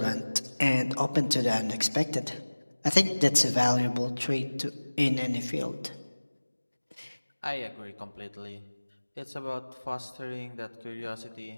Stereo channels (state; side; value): inverted; both; correlation -1.00